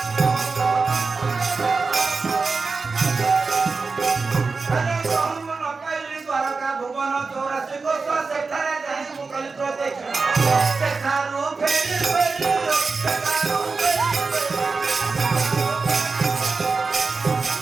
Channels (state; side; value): quieter; left; 4.3 dB